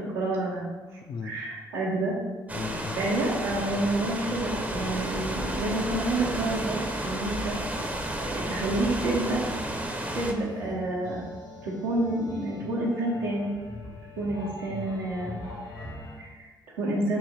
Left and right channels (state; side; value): normal; both; correlation 0.61